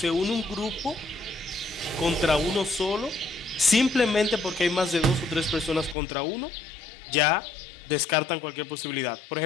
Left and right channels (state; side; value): drops out; right; at 6.0 s